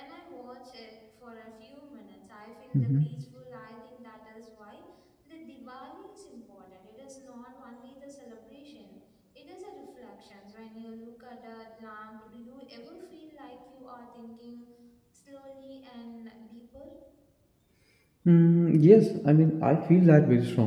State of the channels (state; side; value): identical; both; correlation 1.00